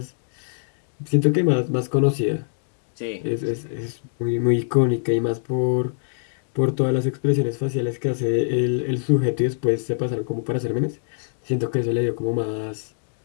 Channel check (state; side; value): silent; right; digital silence